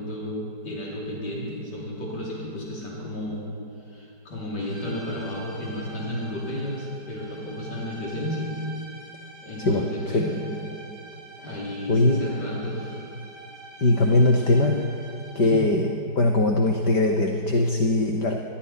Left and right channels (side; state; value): right; late; 5.1 ms